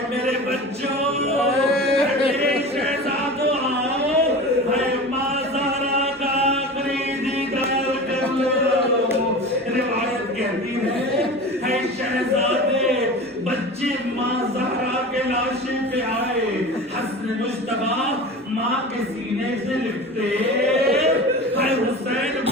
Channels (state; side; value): normal; both; correlation 0.33